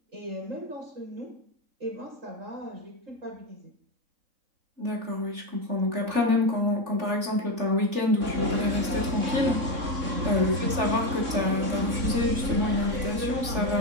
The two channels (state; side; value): late; left; 3.4 ms